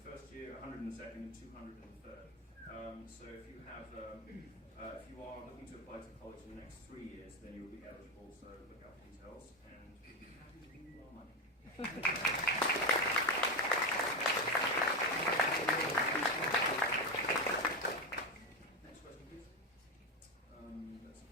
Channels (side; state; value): both; normal; correlation 0.12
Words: year, 100 in the second, and 200 in the third. So if you have, if you are looking to apply to college in the next 3 years, then you will be eligible. So look out for details, and we'll be happy to give you our money. Next question, please. That's